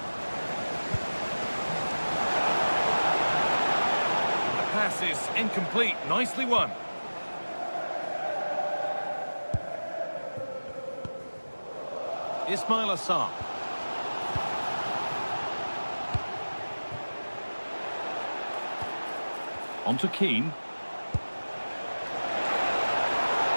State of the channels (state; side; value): inverted; both; correlation -1.00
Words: Pass is incomplete. Nicely won. Ismail Assar. On to Keane.